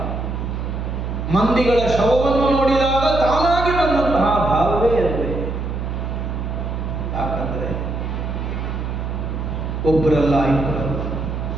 ಮಂದಿಗಳ ಶವವನ್ನು ನೋಡಿದಾಗ ತಾನಾಗಿ ಬಂದಂತಹ ಭಾವವೇ ಅಲ್ವೇ? ಯಾಕಂದ್ರೆ ಒಬ್ಬರಲ್ಲ, ಇಬ್ಬರಲ್ಲ.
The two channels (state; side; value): noise; right; hum, 4 dB below the sound